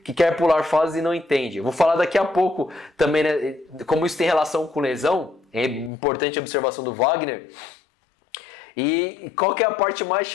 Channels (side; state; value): right; drops out; at 5.9 s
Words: que quer pular fases e não entende. Eu vou falar daqui a pouco também, né, como isso tem relação com lesão, é importante a observação do Wagner. E qual que é a parte mais